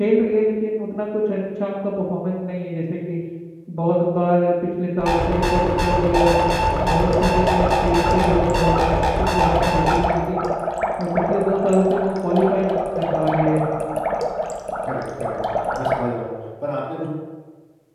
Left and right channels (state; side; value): identical; both; correlation 1.00